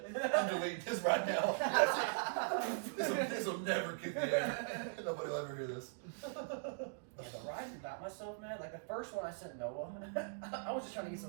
I'm deleting this right now. this will never get the air. Nobody will ever hear this. Yeah, but writing about myself, man, like the first one I sent Noah, I was just trying to get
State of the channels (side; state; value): left; silent; digital silence